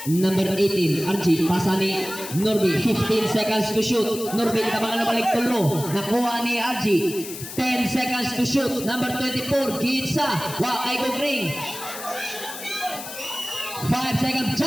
Number 18, RG, pasa ni Norby, 15 seconds to shoot. Norby, tabangan na balik tulo. Nakuha ni RG, 10 seconds to shoot. Number 24, Gitsa, ay go green. 5 seconds,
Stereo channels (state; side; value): noise; left; hiss, 10 dB below the sound